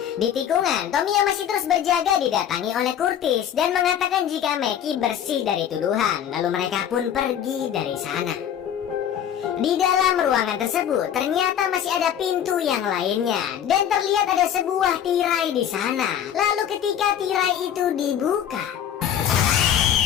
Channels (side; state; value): right; quieter; 9.6 dB